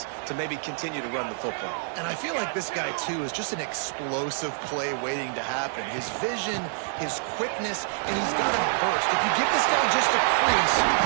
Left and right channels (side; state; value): left; silent; digital silence